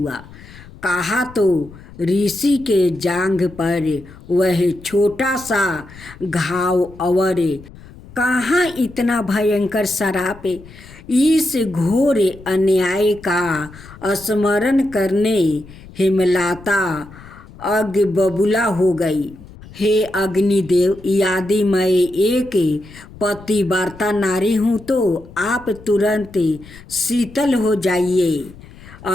कहा तो ऋषि के जांघ पर वह छोटा सा घाव और कहाँ इतना भयंकर श्राप। इस घोर अन्याय का स्मरण करने हेमलता अग बबूला हो गई। हे अग्निदेव, यदि मैं एक पतिव्रता नारी हूँ तो आप तुरंत शीतल हो जाइए।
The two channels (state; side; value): noise; left; rumble, 19 dB below the sound